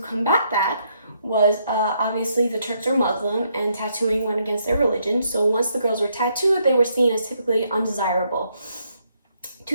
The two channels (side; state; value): both; inverted; correlation -0.75